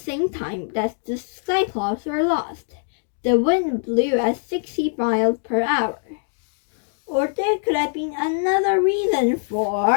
time that the Cyclops were lost. The wind blew at 60 miles per hour. Or there could have been another reason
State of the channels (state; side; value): silent; right; digital silence